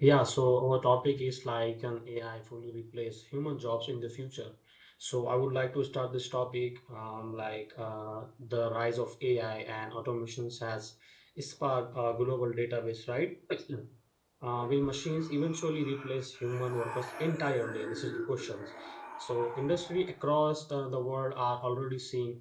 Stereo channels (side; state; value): both; identical; correlation 1.00